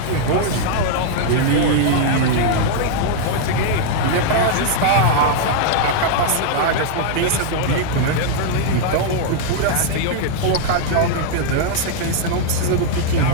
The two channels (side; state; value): both; different; correlation 0.00